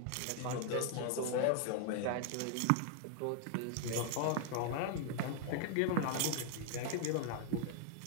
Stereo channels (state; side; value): different; both; correlation 0.00